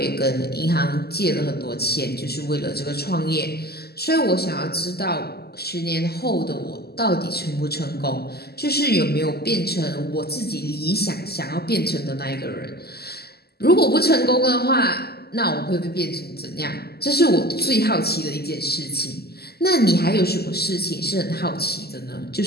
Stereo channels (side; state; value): right; late; 0.46 ms